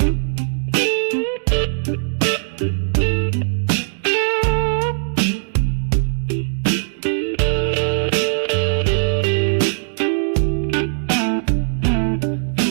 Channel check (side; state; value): left; silent; digital silence